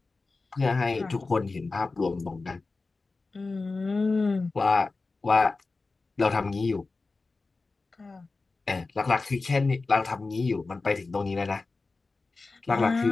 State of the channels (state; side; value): quieter; right; 3.7 dB